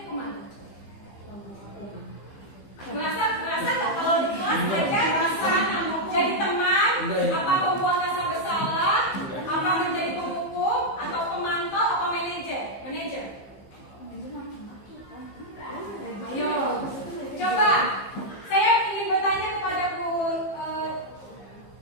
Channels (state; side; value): late; right; 15 ms